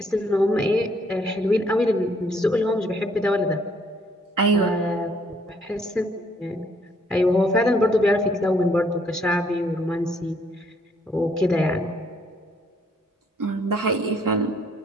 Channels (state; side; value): normal; both; correlation 0.66